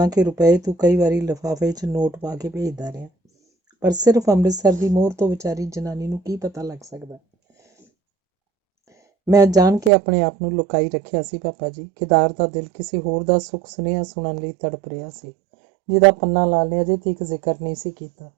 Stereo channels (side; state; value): left; drops out; at 9.9 s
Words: ਰੁਪਏ ਤੂੰ ਕਈ ਵਾਰੀ ਲਿਫਾਫੇ 'ਚ ਨੋਟ ਪਾ ਕੇ ਭੇਜਦਾ ਰਿਹਾ, ਪਰ ਸਿਰਫ ਅੰਮ੍ਰਿਤਸਰ ਦੀ ਮੋਹਰ ਤੋਂ ਵਿਚਾਰੀ ਜਨਾਨੀ ਨੂੰ ਕੀ ਪਤਾ ਲੱਗ ਸਕਦਾ? ਮੈਂ ਜਾਣ ਕੇ ਆਪਣੇ ਆਪ ਨੂੰ ਲੁਕਾਈ ਰੱਖਿਆ ਸੀ ਪਾਪਾ ਜੀ। ਕੇਦਾਰ ਦਾ ਦਿਲ ਕਿਸੇ ਹੋਰ ਦਾ ਸੁੱਖ ਸੁਨੇਹਾ ਸੁਣਨ ਲਈ ਤੜਪ ਰਿਹਾ ਸੀ, ਜਿਹਦਾ ਪੰਨਾ ਲਾਲ ਨੇ ਅਜੇ ਤੱਕ ਜ਼ਿਕਰ ਨਹੀਂ ਸੀ ਕੀਤਾ।